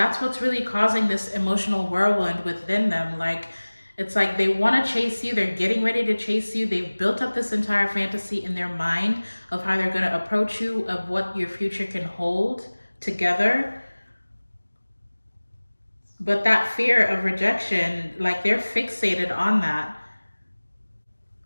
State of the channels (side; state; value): both; inverted; correlation -1.00